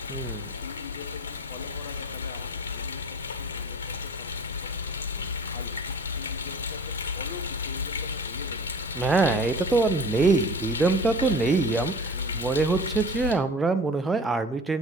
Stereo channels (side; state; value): both; normal; correlation 0.42